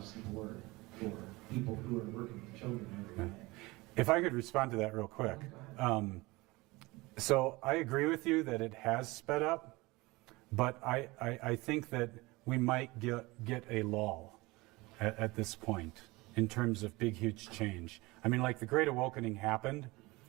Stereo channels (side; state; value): left; quieter; 22.3 dB